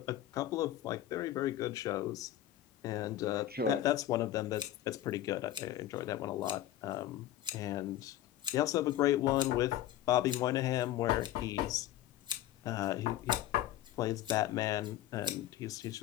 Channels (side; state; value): right; quieter; 13.1 dB